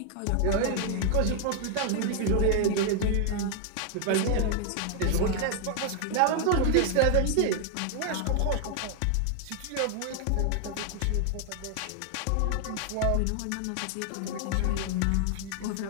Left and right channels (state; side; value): different; both; correlation 0.00